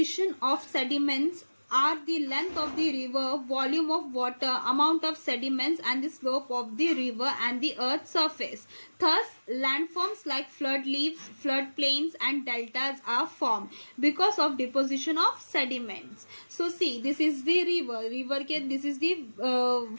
of sediments are the length of the river, volume of water, amount of sediments, and the slope of the river and the earth's surface. Thus, landforms like flood leaves, flood plains, and deltas are formed because of deposition of sediments. So, see, this is the river. River के this is the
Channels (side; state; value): both; inverted; correlation -1.00